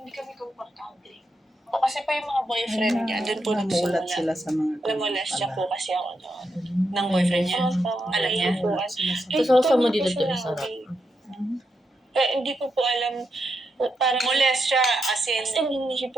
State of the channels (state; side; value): normal; both; correlation 0.84